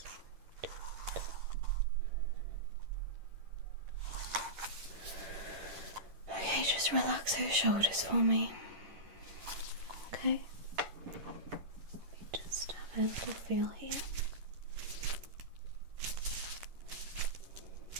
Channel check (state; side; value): late; left; 11 ms